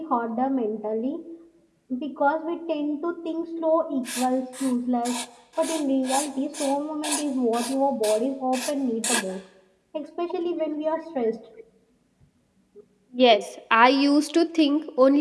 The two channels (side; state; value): both; identical; correlation 1.00